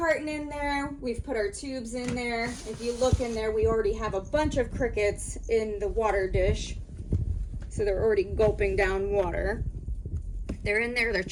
in there. We've put our tubes in there. If you look in there, we already have a bunch of crickets in the water dish. So they're already gulping down water. They're in there, they're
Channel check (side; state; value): both; identical; correlation 1.00